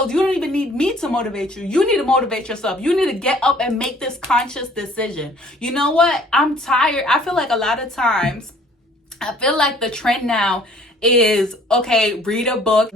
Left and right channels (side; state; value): both; normal; correlation 0.56